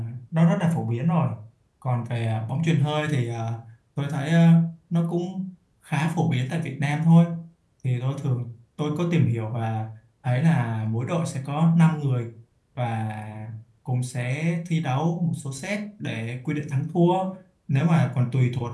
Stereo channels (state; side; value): identical; both; correlation 1.00